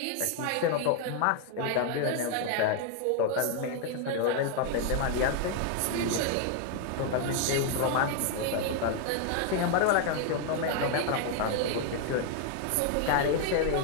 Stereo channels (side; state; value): both; different; correlation 0.00